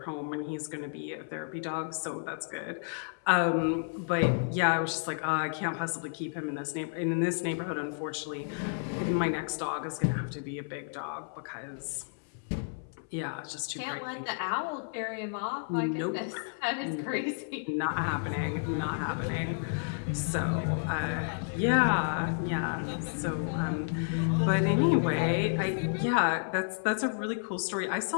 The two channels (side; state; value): right; silent; 57 dB below the other